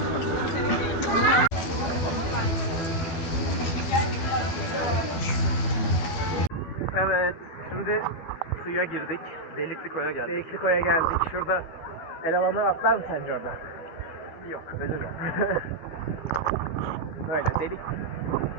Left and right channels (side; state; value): right; late; 12 ms